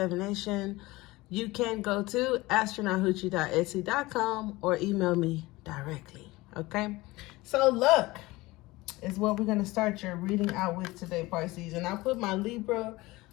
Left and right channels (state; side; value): quieter; right; 20.5 dB